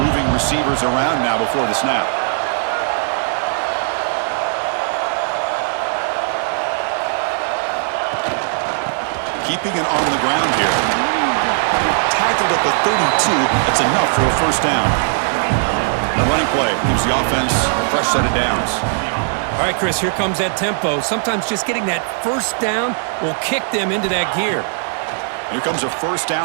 receivers around now before the snap. Keeping it on the ground here. Tackled at the 32. That's enough for a first down. The running play gives the offense a fresh set of downs. All right, Chris, here comes that tempo. Sometimes just getting that first down will kick them into that gear. Here comes a first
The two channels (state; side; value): silent; left; digital silence